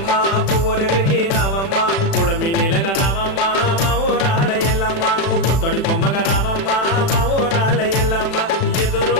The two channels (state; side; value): late; right; 36 ms